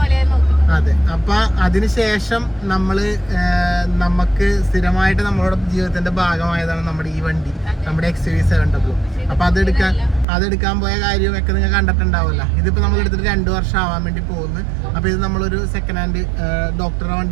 അതെ, അപ്പൊ അതിനുശേഷം നമുക്ക് സ്ഥിരമായിട്ട് നമ്മളുടെ ജീവിതത്തിന്റെ ഭാഗമായതാണ് നമ്മുടെ ഈ വണ്ടി, നമ്മുടെ XUV700. അപ്പൊ അതെടുക്കാൻ പോയ കാര്യമൊക്കെ നിങ്ങൾ കണ്ടിട്ടുണ്ടാവില്ല. ഇതിപ്പോ നമ്മൾ എടുത്തിട്ട് 2 വർഷം ആവാൻ വേണ്ടി പോകുന്നു. അപ്പൊ ഇത് നമ്മളൊരു സെക്കൻഡ് ഹാൻഡ് ഡോക്ടറുടെ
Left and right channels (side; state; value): left; drops out; at 10.2 s